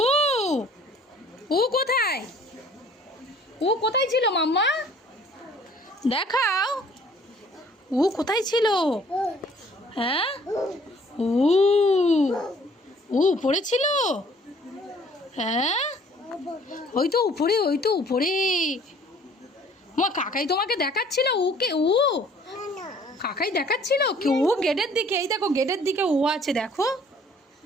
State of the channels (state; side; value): normal; both; correlation 0.56